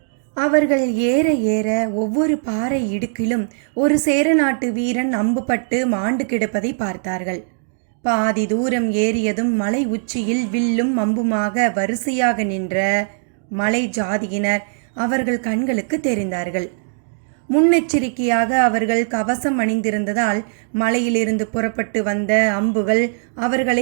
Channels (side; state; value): left; silent; digital silence